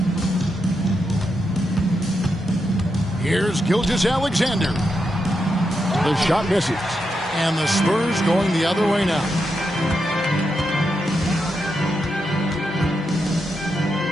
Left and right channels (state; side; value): normal; both; correlation 0.85